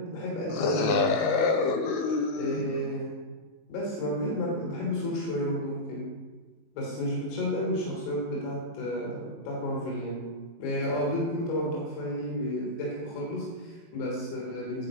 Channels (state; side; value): late; right; 19 ms